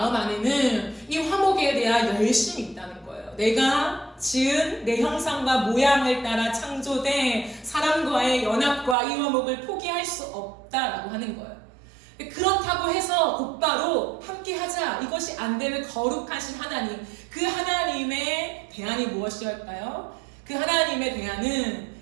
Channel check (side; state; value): left; drops out; at 9.0 s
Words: 안에는 이 화목에 대한 열심이 있다는 거예요. 내가 지은 내 형상과 모양을 따라 창조된 사람과의 연합과 이 화목을 포기할 수 없다라고 하는 거예요. 그렇다고 해서 곧바로 함께 하자, 이것이 안 되는 거룩하신 하나님, 그 하나님의 대안이 무엇이었을까요? 그 하나님의 대안은